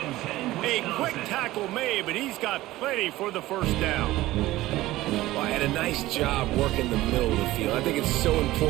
A quick tackle made, but he's got plenty for the first down. Well, and a nice job working the middle of the field. I think it's so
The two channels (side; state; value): left; quieter; 16.9 dB